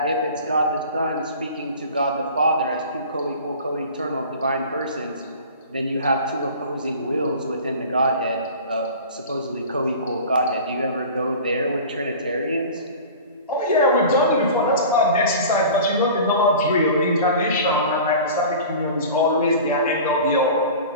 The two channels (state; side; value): inverted; both; correlation -0.39